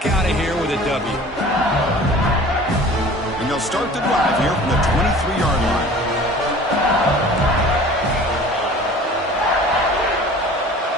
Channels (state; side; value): normal; both; correlation 0.44